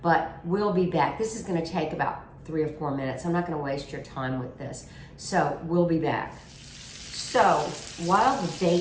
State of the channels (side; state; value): both; identical; correlation 1.00